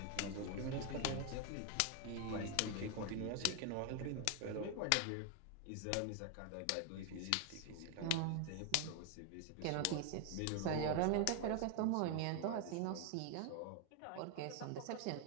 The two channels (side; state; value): both; different; correlation 0.00